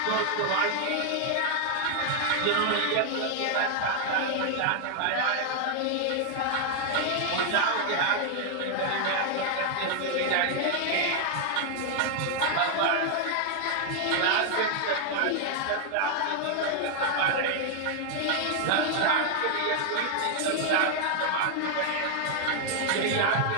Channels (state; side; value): different; both; correlation 0.00